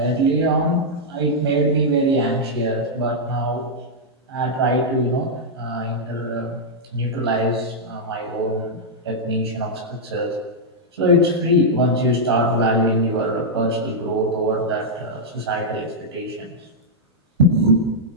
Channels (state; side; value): normal; both; correlation -0.06